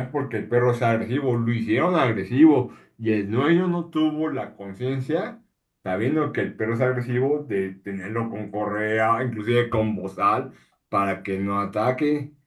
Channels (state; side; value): identical; both; correlation 1.00